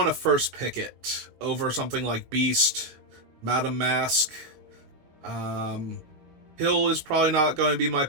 to first pick it over something like Beast, Madam Mask? Hill is probably not going to be my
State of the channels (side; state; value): left; late; 19 ms